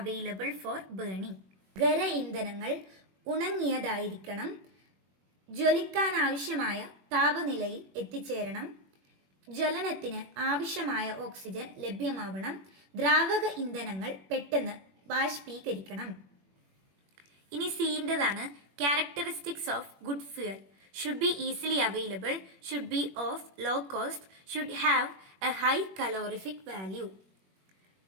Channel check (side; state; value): left; late; 21 ms